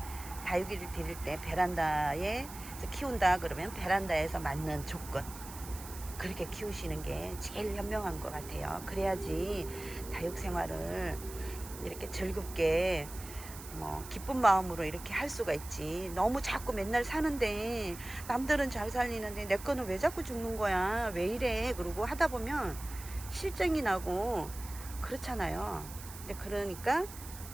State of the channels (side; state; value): right; noise; hiss, 14 dB below the sound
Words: 다육이를 기를 때 베란다에 키운다 그러면 베란다에서 맞는 조건 그렇게 키우시는 게 제일 현명한 것 같아요. 그래야지 다육 생활을 이렇게 즐겁게 뭐 기쁜 마음으로 이렇게 할 수가 있지. 너무 자꾸 맨날 사는데 남들은 잘 살리는데 내 거는 왜 자꾸 죽는 거야 왜 이래 그러고 하다 보면 실증이 나고 그렇잖아요. 근데 그러니까